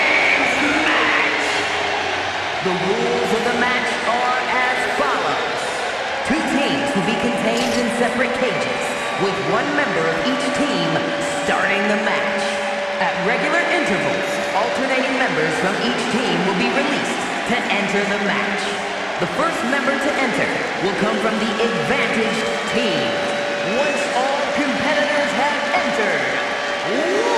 match. The rules of the match are as follows. Two teams will be contained in separate cages, with one member of each team starting the match. At regular intervals, alternating members from each team will be released to enter the match. The first member to enter will come from the advantaged team. Once all competitors have entered,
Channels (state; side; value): identical; both; correlation 1.00